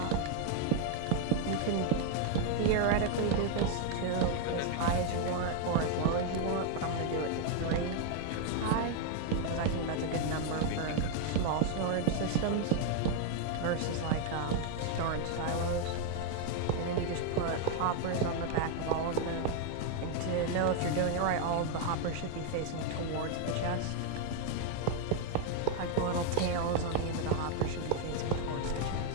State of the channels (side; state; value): both; different; correlation 0.00